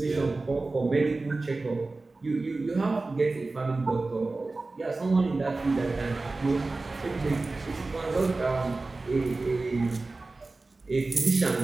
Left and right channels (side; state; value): left; quieter; 3.4 dB